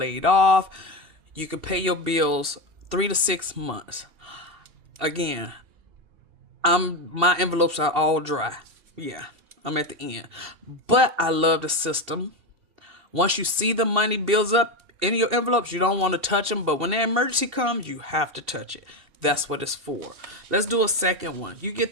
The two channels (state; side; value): late; left; 2.7 ms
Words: off. You can pay your bills 3 to 6 months. Again, my envelopes are all dry. Yeah, I'm at the end. But I love the system. Once you see the money builds up in your envelopes, you don't want to touch them. But when the emergency comes, you have to touch it. That's what it's for. Let's do a second one. You get